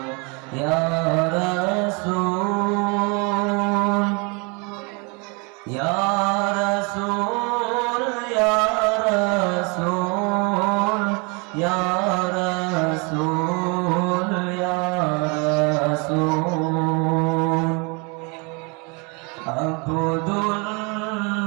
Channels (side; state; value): left; quieter; 31.6 dB